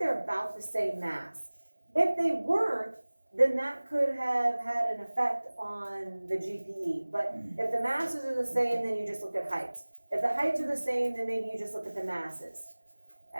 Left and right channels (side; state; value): both; inverted; correlation -1.00